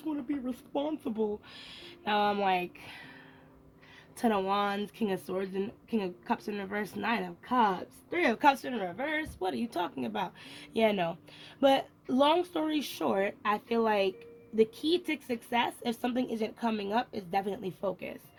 want to be responsible. Now I'm like, Ten of Wands, King of Swords, and King of Cups in reverse, Nine of Cups, Three of Cups in reverse. What are you talking about? Yeah, no. But long story short, I feel like the key to success, if something isn't coming up, is definitely focus.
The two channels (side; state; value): both; identical; correlation 1.00